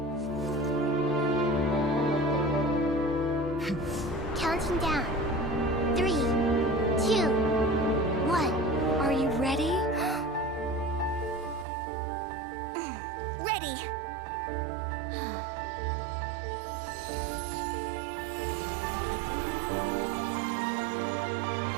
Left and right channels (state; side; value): drops out; left; at 11.7 s